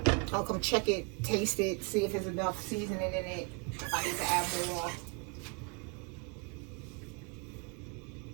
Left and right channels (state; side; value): quieter; left; 32.0 dB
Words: I'll come check it, taste it, see if there's enough seasoning in it. If I need to add more.